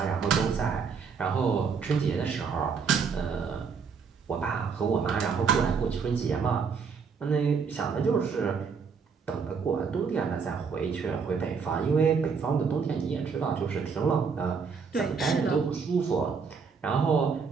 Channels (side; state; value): left; quieter; 5.8 dB